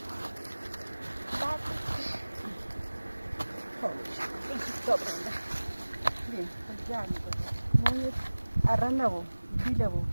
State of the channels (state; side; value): inverted; both; correlation -1.00